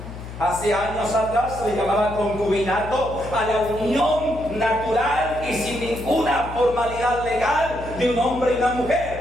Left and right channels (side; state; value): left; noise; hum, 11 dB below the sound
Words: Hace años atrás se le llamaba concubinato a la unión natural y sin ninguna formalidad legal de un hombre y una